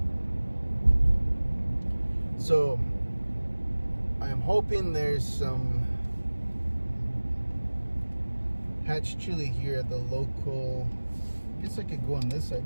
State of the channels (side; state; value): both; inverted; correlation -1.00